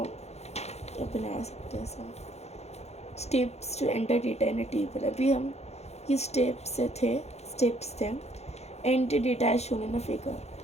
बना सकते हैं ऐसा। Steps to enter data in a table, अभी हम ये स्टेप्स थे enter data as shown in a figure,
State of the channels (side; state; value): right; late; 0.31 ms